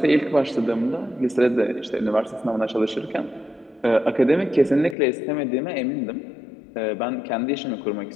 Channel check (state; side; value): drops out; right; at 5.0 s